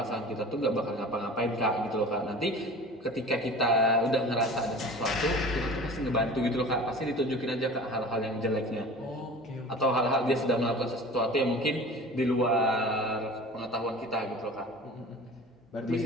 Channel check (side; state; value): both; normal; correlation 0.40